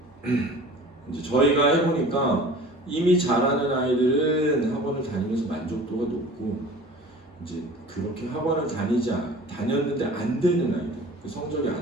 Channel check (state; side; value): normal; both; correlation 0.43